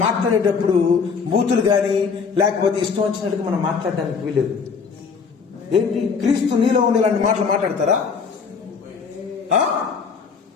మాట్లాడేటప్పుడు బూతులు కానీ లేకపోతే ఇష్టం వచ్చినట్టుగా మనం మాట్లాడడానికి వీలేదు. ఏంటి? క్రీస్తు నీలో ఉండే ఇలాంటి మాటలు మాట్లాడతారా?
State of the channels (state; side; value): quieter; right; 5.7 dB